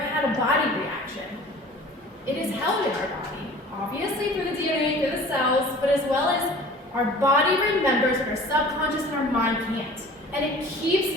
a body reaction? It is held in our body, obviously through the DNA, through the cells, but as well as our body remembers, but our subconscious and our mind can't. And it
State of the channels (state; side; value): normal; both; correlation 0.45